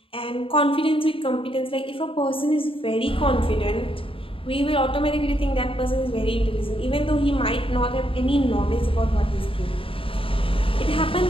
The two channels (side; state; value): right; late; 0.26 ms